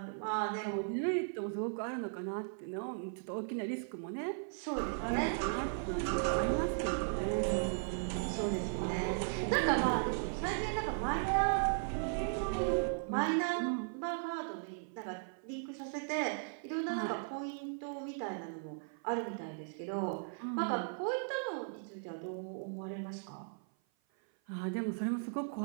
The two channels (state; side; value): silent; left; 53 dB below the other